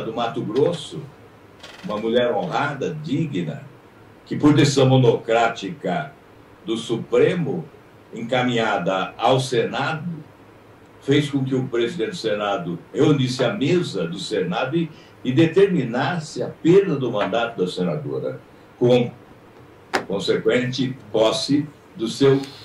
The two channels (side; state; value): both; identical; correlation 1.00